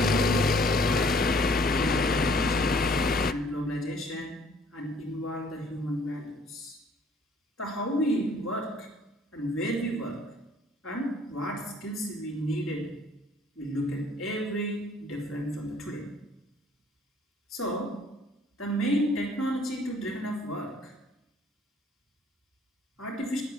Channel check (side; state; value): both; normal; correlation 0.58